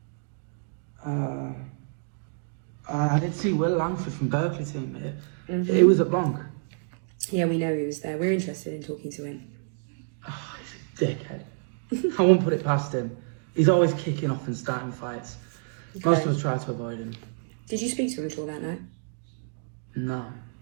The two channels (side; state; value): left; silent; digital silence